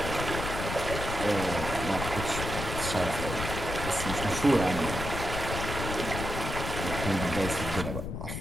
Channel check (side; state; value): left; noise; rumble, 4 dB below the sound